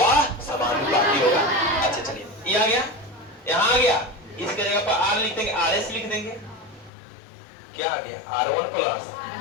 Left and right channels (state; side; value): drops out; right; at 6.9 s